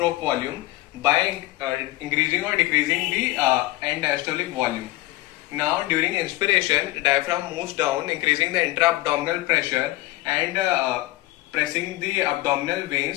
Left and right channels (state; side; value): quieter; right; 18.2 dB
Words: volume by increasing or decreasing the end diastolic volume. Now during inspiration, diaphragm moves down, increasing the intra-abdominal pressure and pressing the abdominal